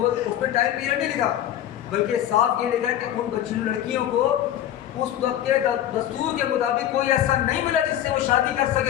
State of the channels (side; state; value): right; quieter; 11.8 dB